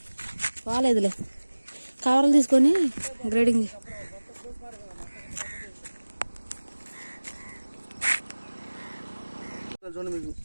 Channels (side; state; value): both; inverted; correlation -1.00